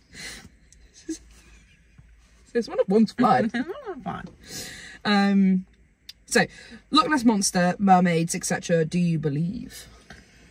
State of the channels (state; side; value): identical; both; correlation 1.00